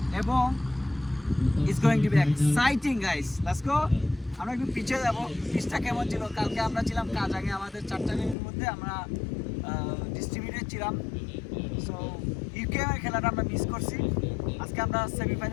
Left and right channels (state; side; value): drops out; right; at 8.3 s